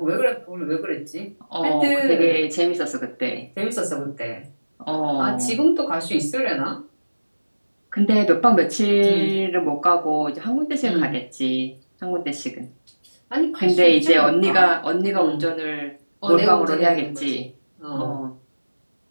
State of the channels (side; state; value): both; inverted; correlation -1.00